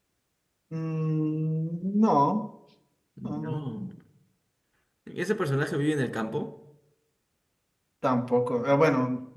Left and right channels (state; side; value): identical; both; correlation 1.00